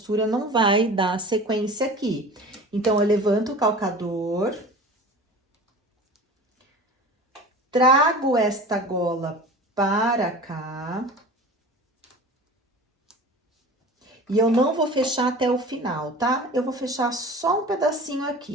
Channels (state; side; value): normal; both; correlation 0.37